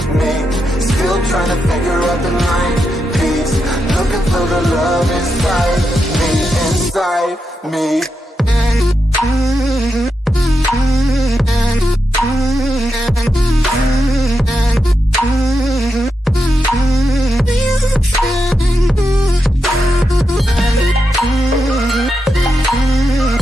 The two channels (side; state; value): both; normal; correlation 0.86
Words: me, still trying to figure out the line piece, looking for the love inside me, inside me.